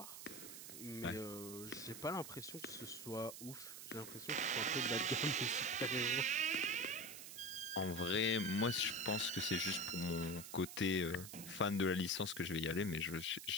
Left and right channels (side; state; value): right; noise; hiss, 11 dB below the sound